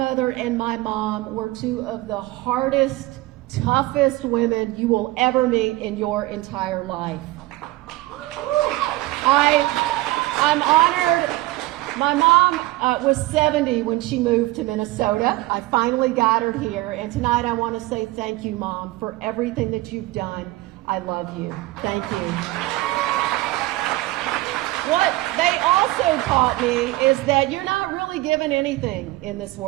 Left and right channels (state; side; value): quieter; left; 19.1 dB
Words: and my mom were 2 of the hardest, toughest women you will ever meet in your entire life. I'm honored. My mom was 70 when she moved to Minnesota. I finally got her here, and tonight I want to say thank you, Mom, for everything that you've done. I love you. Thank you. What they also taught me is that you're not really given anything in this